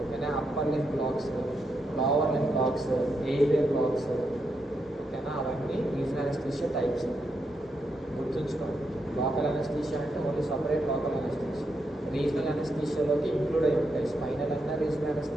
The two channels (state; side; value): normal; both; correlation 0.82